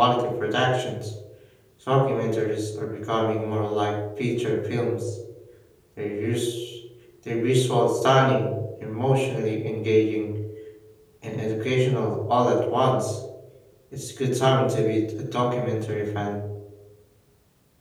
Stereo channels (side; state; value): both; identical; correlation 1.00